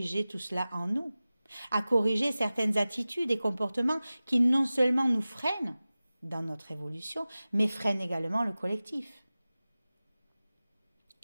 tout cela en nous, à corriger certaines attitudes et comportements qui non seulement nous freinent dans notre évolution, mais freinent également le collectif.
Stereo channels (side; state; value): both; inverted; correlation -0.97